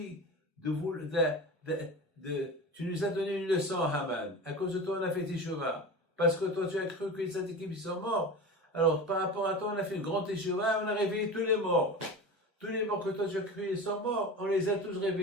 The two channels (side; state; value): both; normal; correlation 0.30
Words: de vous, tu nous as donné une leçon Haman. À cause de toi on a fait Teshuvah. Parce que toi tu as cru que les tzadikim ils sont morts. Alors par rapport à toi on a fait une grande Teshuvah, on a réveillé tous les morts. Tous les morts que toi tu as cru ils sont morts, on les a tous